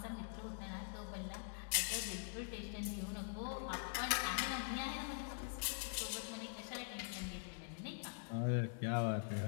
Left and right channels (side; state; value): right; silent; digital silence